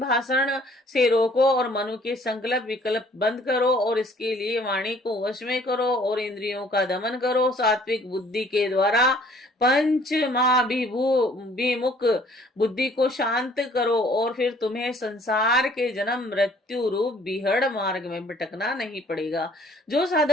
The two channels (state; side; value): normal; both; correlation 0.58